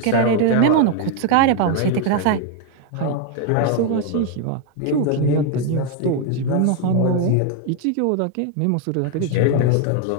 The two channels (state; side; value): different; both; correlation 0.01